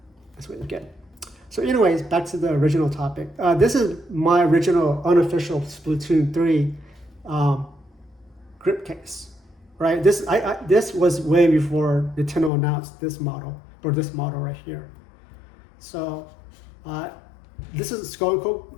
That's what you get. So anyways, back to the original topic. This is my original unofficial Splatoon 3 grip case, right? This was way before Nintendo announced this model, or this model right here. So this is Skull Co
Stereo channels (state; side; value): drops out; right; at 12.5 s